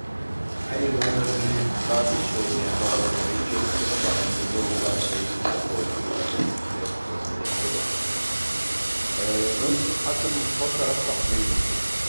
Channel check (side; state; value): both; inverted; correlation -1.00